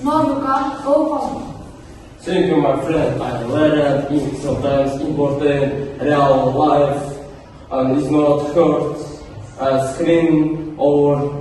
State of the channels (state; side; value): identical; both; correlation 1.00